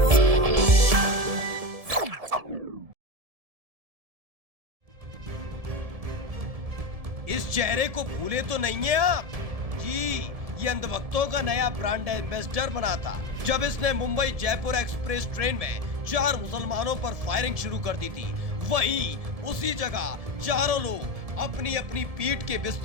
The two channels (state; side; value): late; left; 1.7 ms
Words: इस चेहरे को भूले तो नहीं है आप जी। ये अंधभक्तों का नया ब्रांड एम्बेसडर बना था जब इसने मुंबई जयपुर एक्सप्रेस ट्रेन में 4 मुसलमानों पर फायरिंग शुरू कर दी थी। वहीं उसी जगह चारों लोग अपनी अपनी पीठ के